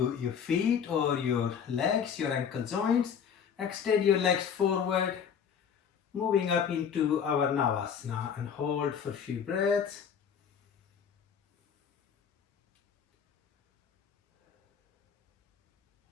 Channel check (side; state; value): right; quieter; 7.4 dB